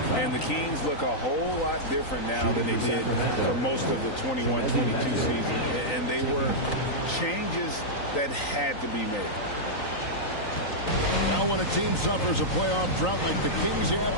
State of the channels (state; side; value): late; right; 3.9 ms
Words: And the Kings look a whole lot different now than they did for most of the 21-22 season. And they were changes that had to be made. Now when a team suffers a playoff drought like the Kings